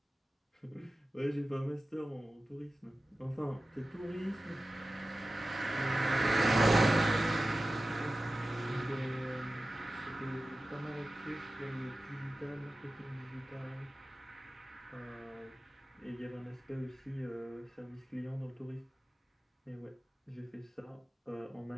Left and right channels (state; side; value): normal; both; correlation 0.95